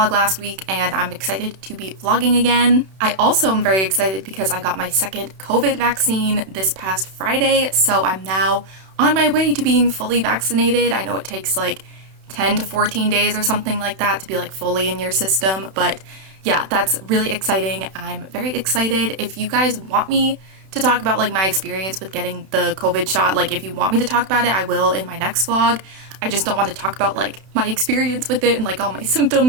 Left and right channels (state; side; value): late; left; 31 ms